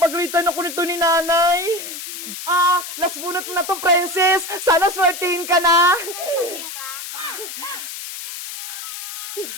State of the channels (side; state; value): left; noise; hiss, 9 dB below the sound